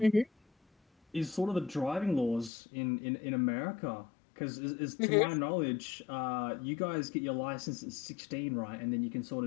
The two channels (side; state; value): right; drops out; at 2.5 s